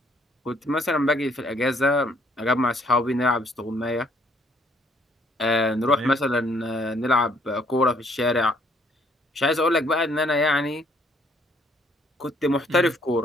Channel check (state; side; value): normal; both; correlation 0.65